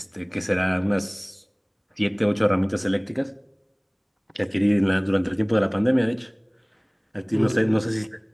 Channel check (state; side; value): identical; both; correlation 1.00